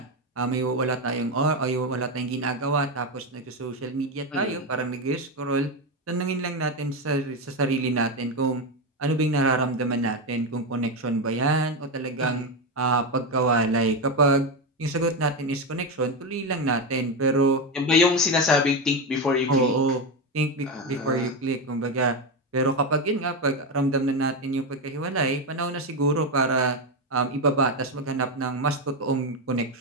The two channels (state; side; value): normal; both; correlation 0.12